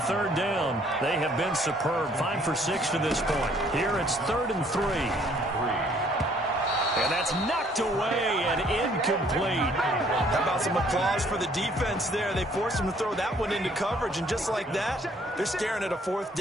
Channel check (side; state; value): both; normal; correlation 0.61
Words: 3rd down. They have been superb. 5 for 6 to this point. Here it's 3rd and 3. And that's knocked away and incomplete. How about some applause for the defense there? They forced him to throw that one into coverage, and just like that, they're staring at a 4th